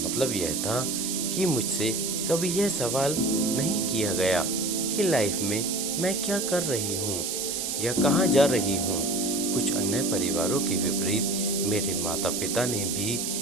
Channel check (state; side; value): noise; right; hiss, 2 dB below the sound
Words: यह था कि मुझसे कभी यह सवाल नहीं किया गया कि लाइफ में मैं क्या कर रही हूँ या कहाँ जा रही हूँ। कुछ अन्य परिवारों के विपरीत मेरे माता पिता ने भी